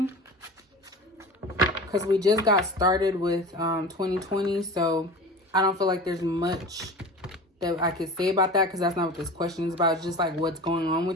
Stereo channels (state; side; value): normal; both; correlation 0.35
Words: Because we just got started with 2020. So I don't feel like there's much that I could say about that, because that's not what this question is about. It's just like what's going on